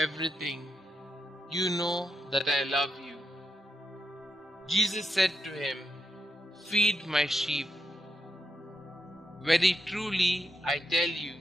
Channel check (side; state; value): both; normal; correlation 0.85